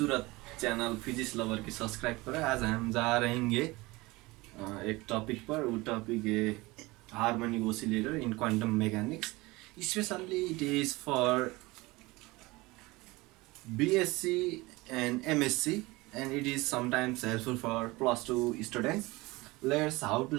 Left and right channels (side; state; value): left; quieter; 21.9 dB